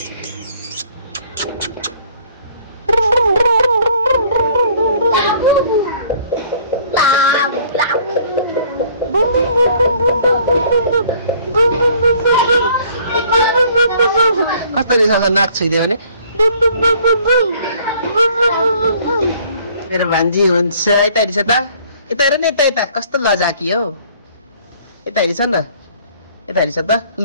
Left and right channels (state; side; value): inverted; both; correlation -0.57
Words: कसरी नाक छुइदियो भने मेरो भान्जी हुन्छ यता हेरिस त यता हेर न यता कस्तो लजाकी हौ यता हेरिस न यता हेरिस त